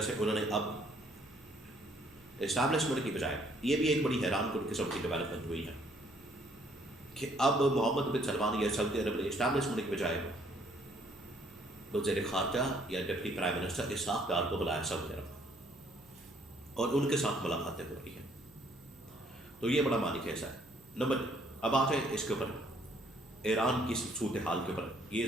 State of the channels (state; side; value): noise; right; hum, 26 dB below the sound